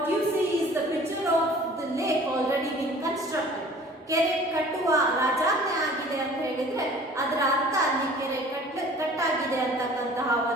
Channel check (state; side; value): normal; both; correlation 0.48